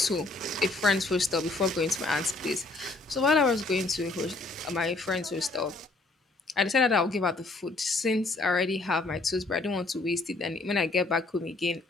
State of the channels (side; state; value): right; quieter; 3.3 dB